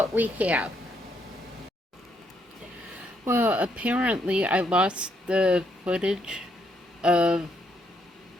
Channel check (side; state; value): both; normal; correlation 0.74